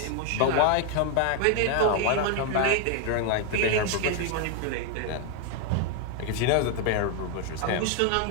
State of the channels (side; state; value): both; different; correlation 0.01